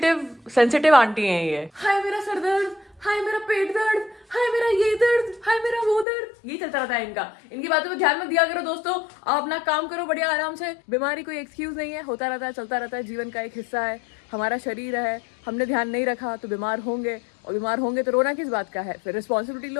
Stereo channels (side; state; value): right; drops out; at 6.1 s